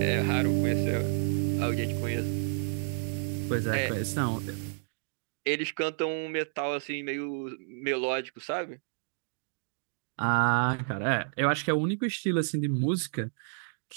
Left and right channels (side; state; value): left; silent; digital silence